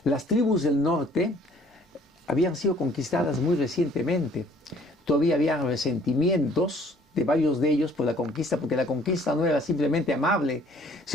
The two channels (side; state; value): both; normal; correlation 0.58